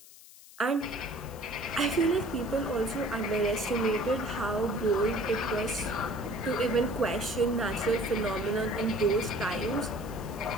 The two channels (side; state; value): left; noise; hiss, 20 dB below the sound